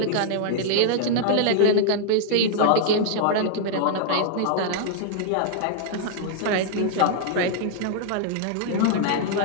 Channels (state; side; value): different; both; correlation -0.01